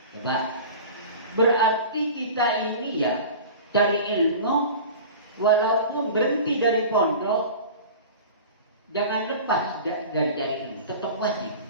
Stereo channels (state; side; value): inverted; both; correlation -0.37